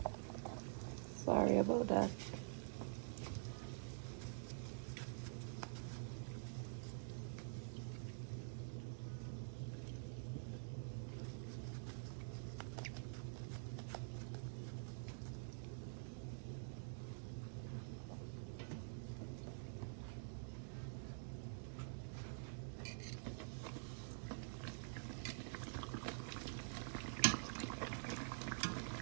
Sorry about that.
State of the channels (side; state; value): left; silent; digital silence